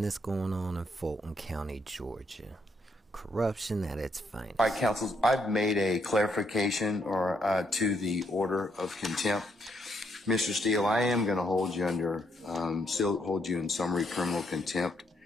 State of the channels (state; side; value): normal; both; correlation 0.74